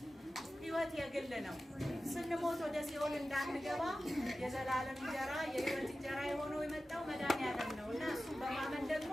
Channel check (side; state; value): both; normal; correlation 0.94